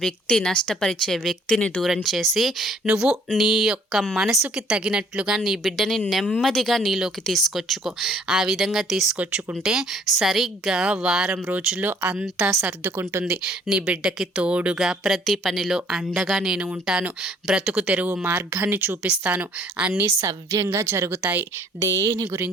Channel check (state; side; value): normal; both; correlation 0.59